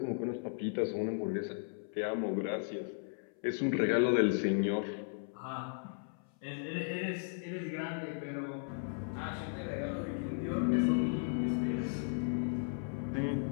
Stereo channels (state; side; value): silent; right; 54 dB below the other